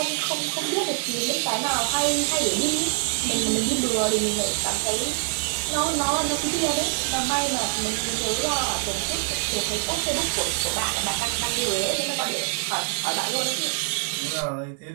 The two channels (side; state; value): left; silent; 57 dB below the other